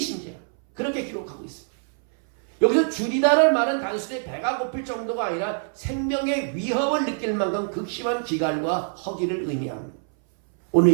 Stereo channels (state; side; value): silent; left; 61 dB below the other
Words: 그렇게 기록하고 있습니다. 여기서 줄이다는 말은 단순히 배가 고플 정도가 아니라 생명의 위협을 느낄 만큼 극심한 기갈과 허기를 의미합니다. 오늘